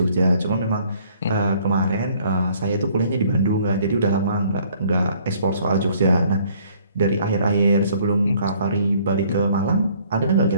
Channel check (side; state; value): both; inverted; correlation -0.60